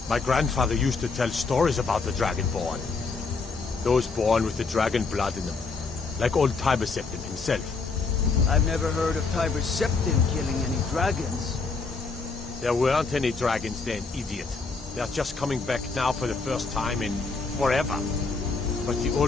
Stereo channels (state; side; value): quieter; right; 4.3 dB